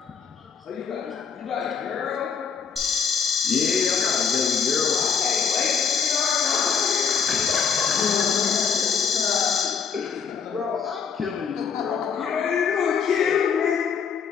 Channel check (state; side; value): quieter; right; 6.3 dB